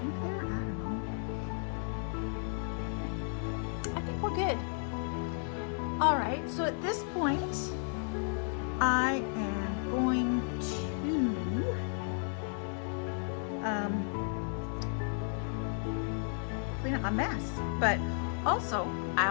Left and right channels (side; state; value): right; silent; 55 dB below the other